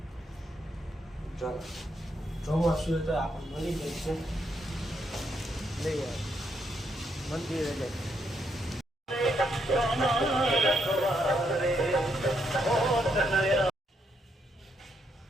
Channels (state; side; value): normal; both; correlation 0.77